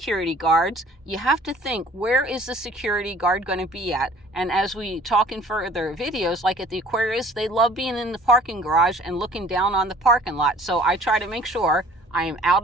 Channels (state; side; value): normal; both; correlation 0.51